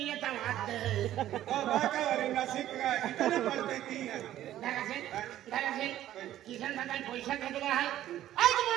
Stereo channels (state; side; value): quieter; left; 12.9 dB